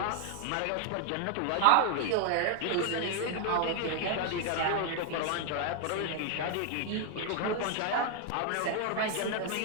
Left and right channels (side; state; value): both; different; correlation 0.00